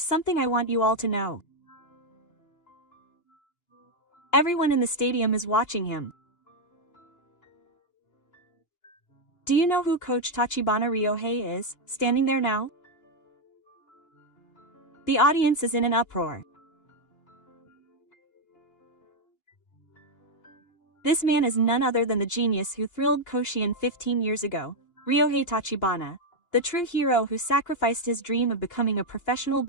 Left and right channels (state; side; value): late; right; 2.9 ms